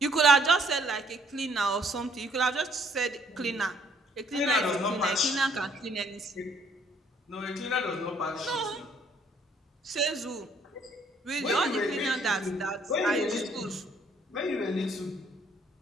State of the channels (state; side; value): normal; both; correlation 0.64